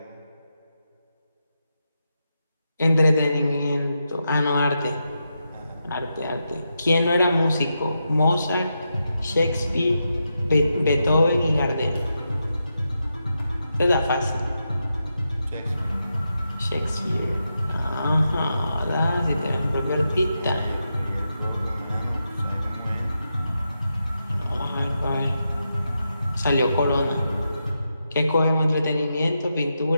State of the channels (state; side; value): inverted; both; correlation -0.86